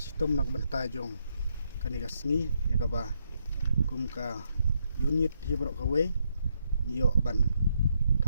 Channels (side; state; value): both; inverted; correlation -0.77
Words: nak benta jong kaniga sngi ya ka ba kum ka unit hi barok ka we ngiyo ban